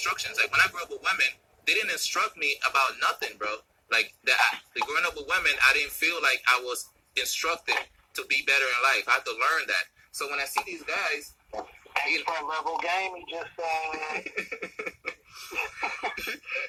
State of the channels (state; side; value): identical; both; correlation 1.00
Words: Like when I grew up with women, they didn't instruct me about nothing, bro. Like the growing up with women, I didn't feel like I was instructed to be better in life. I had to learn that. So when I see these guys, expert level game, he just